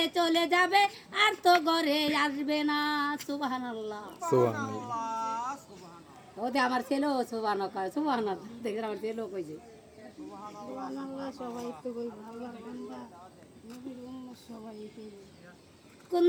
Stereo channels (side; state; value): both; identical; correlation 1.00